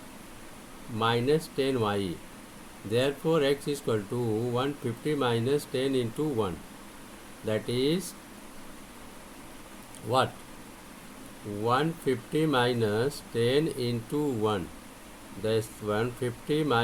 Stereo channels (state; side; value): identical; both; correlation 1.00